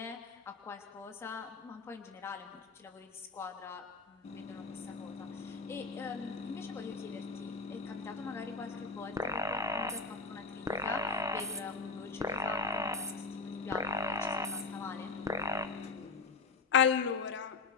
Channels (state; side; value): quieter; right; 4.3 dB